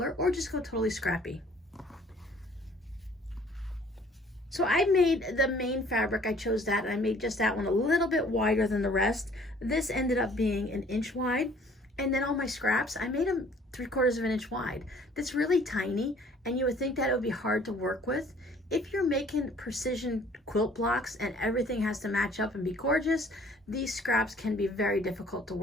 or just go totally scrappy. So I made the main fabric, I chose that, and I made just that one a little bit wider than the rest. This ended up being an inch wide. And then all my scraps, I made them 3/4 of an inch wide. That's really tiny, and you would think that it would be hard to work with. If you're making precision quilt blocks and everything has to match up and be gorgeous, these scraps can be very difficult to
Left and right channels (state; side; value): normal; both; correlation 0.56